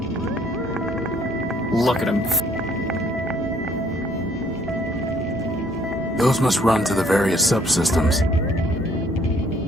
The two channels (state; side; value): normal; both; correlation 0.62